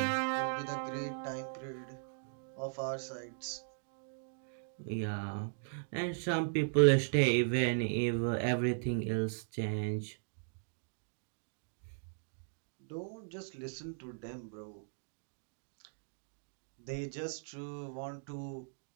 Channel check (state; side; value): silent; left; digital silence